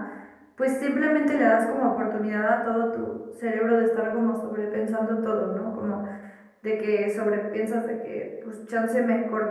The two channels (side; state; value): both; identical; correlation 1.00